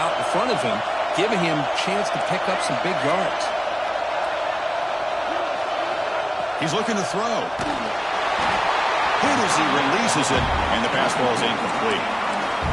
in front of him, giving him a chance to pick up some big yards. He's looking to throw. Hit as he releases it, and the pass ball is incomplete.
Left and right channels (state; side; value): identical; both; correlation 1.00